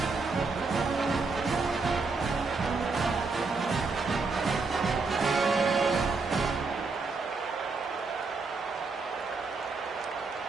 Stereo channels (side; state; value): left; quieter; 4.2 dB